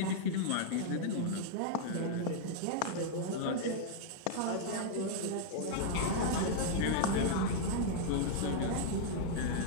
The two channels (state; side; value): different; both; correlation -0.01